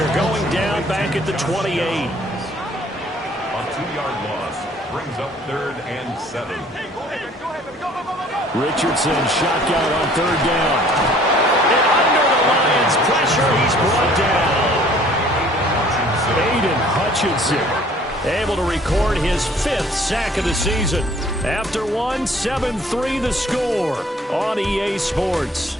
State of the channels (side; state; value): both; normal; correlation 0.55